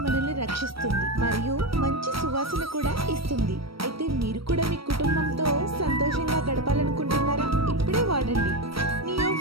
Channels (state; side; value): late; left; 0.75 ms